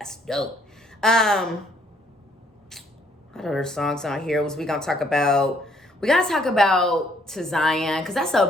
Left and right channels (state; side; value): normal; both; correlation 0.66